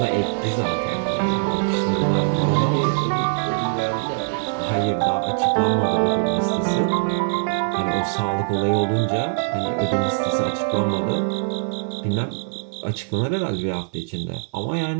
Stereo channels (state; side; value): silent; left; 64 dB below the other